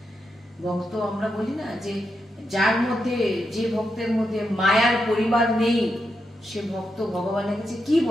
ভক্ত আমরা বলি না যে যার মধ্যে, যে ভক্তের মধ্যে মায়ার পরিবার নেই সে ভক্ত ভগবানের কাছে কি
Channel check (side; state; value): both; normal; correlation 0.84